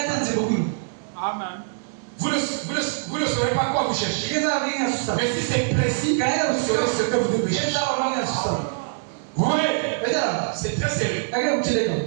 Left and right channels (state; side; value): silent; left; 63 dB below the other